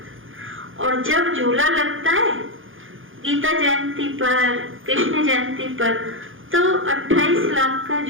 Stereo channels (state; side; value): late; left; 0.58 ms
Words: और जब झूला लगता है गीता जयंती पर, कृष्ण जयंती पर तो 28 लाख का